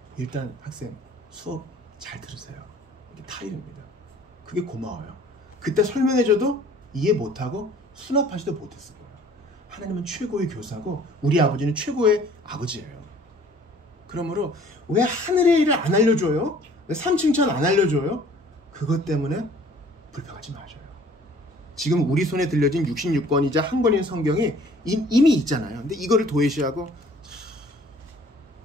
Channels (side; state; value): both; normal; correlation 0.53